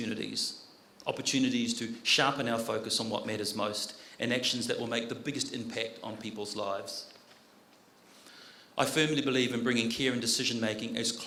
to sharpen our focus on what matters most, and actions that will make the biggest impact on people's lives. I firmly believe in bringing care and decision-making as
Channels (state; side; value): identical; both; correlation 1.00